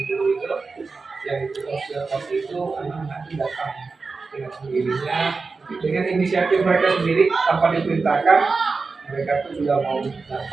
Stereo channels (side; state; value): left; quieter; 4.3 dB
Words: itu yang itu observasi itu anak-anak datang dengan sendirinya dengan inisiatif mereka sendiri tanpa diperintahkan, mereka tuh juga mau